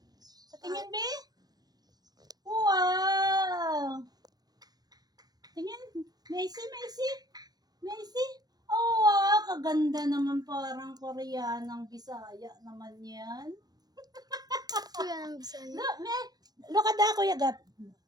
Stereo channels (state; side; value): late; left; 0.19 ms